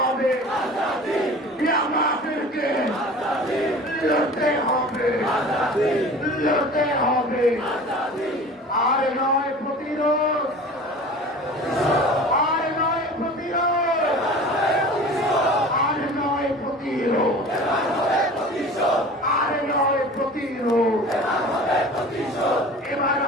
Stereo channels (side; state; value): both; normal; correlation 0.40